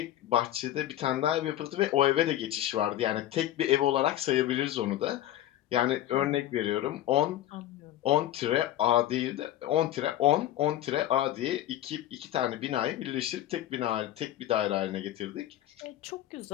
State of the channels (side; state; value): right; quieter; 13.1 dB